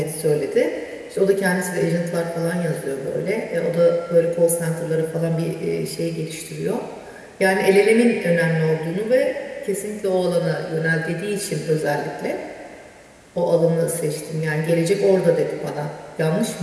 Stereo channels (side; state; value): both; identical; correlation 1.00